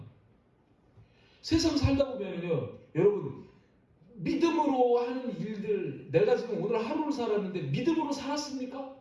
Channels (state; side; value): identical; both; correlation 1.00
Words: 세상 살다 보면요 여러분 믿음으로 하는 일들, 내가 지금 오늘 하루를 살았는데 믿음으로